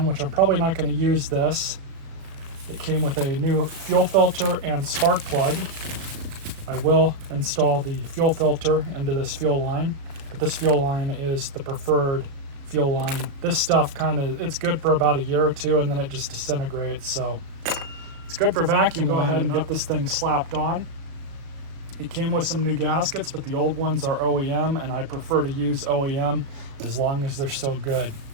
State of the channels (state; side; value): late; left; 36 ms